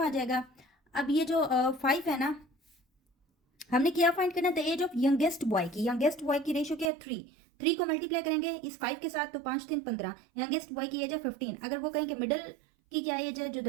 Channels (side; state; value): left; drops out; at 6.9 s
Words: जाएगा। अब ये जो 5 है ना, हमने क्या फाइंड करना है the age of youngest boy की, यंगेस्ट बॉय की रेशो क्या है 3 को मल्टीप्लाई करेंगे इस 5 के साथ तो 5 3 15, यंगेस्ट बॉय की एज है 15। अगर वो कहें कि मिडिल की क्या एज है, जो